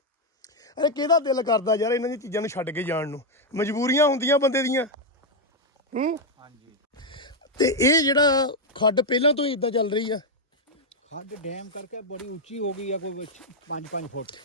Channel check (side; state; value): both; normal; correlation 0.01